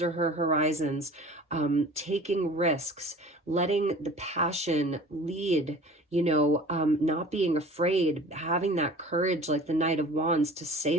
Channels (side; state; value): both; normal; correlation 0.43